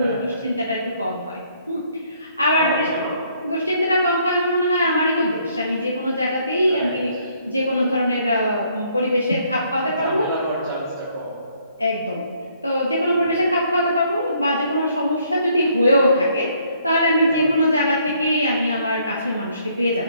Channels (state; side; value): inverted; both; correlation -0.67